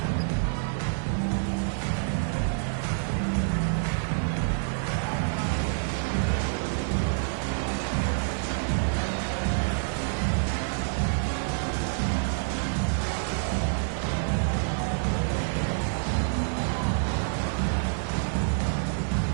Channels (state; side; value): silent; left; digital silence